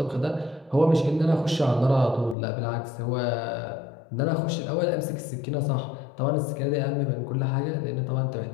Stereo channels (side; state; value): right; drops out; at 2.4 s